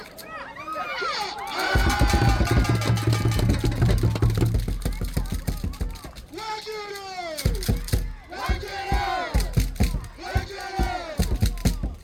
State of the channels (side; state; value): both; identical; correlation 1.00